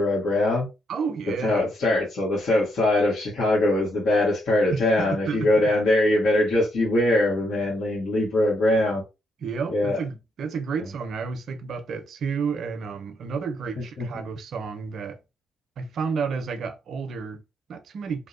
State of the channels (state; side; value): normal; both; correlation 0.76